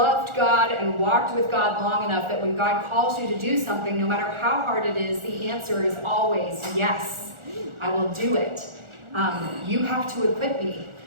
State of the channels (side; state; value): left; late; 1.4 ms